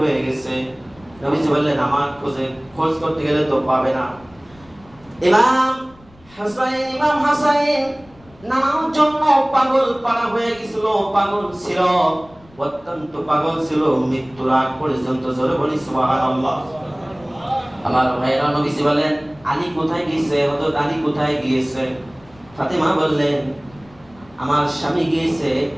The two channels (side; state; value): left; noise; rumble, 26 dB below the sound